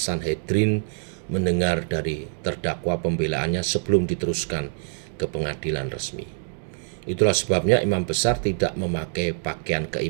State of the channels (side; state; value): left; silent; digital silence